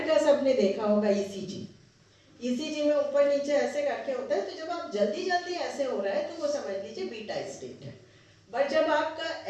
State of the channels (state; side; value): identical; both; correlation 1.00